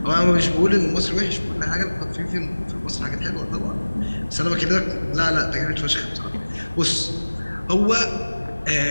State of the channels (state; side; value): inverted; both; correlation -1.00